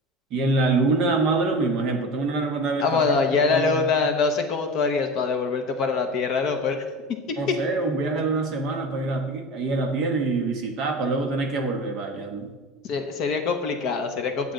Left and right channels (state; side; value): normal; both; correlation 0.31